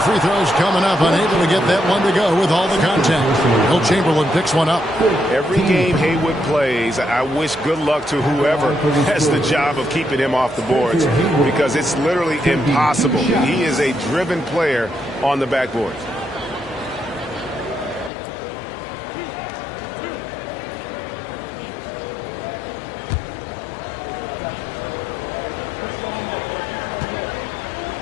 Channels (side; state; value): right; drops out; at 18.1 s